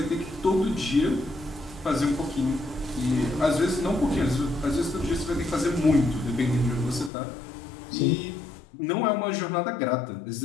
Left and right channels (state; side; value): drops out; right; at 7.1 s